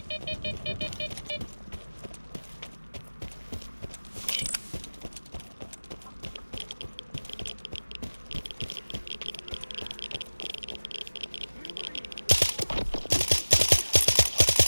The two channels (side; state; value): both; inverted; correlation -1.00